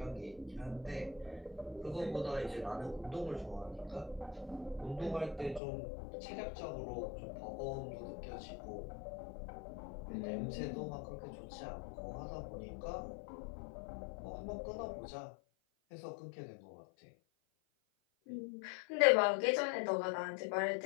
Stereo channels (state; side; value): drops out; right; at 5.6 s